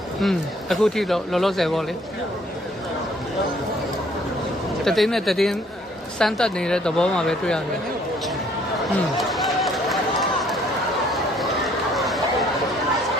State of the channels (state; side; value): normal; both; correlation 0.61